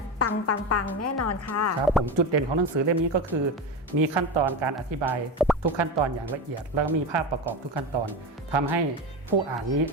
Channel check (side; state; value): both; normal; correlation 0.20